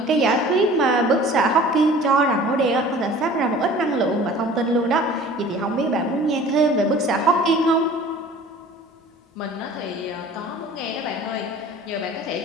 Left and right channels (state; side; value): normal; both; correlation 0.46